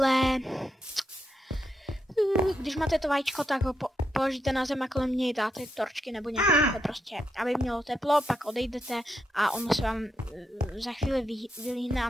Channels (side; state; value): both; normal; correlation 0.82